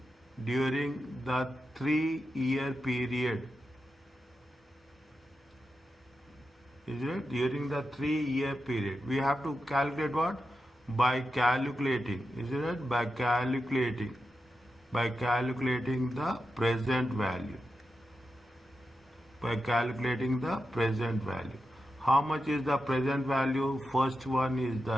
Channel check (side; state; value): both; normal; correlation 0.89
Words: the 3-year period. Is it? During the 3-year period. We have to calculate what? By calculating. Is it? By calculating the present value. By calculating the present value. How much is the present value? First one is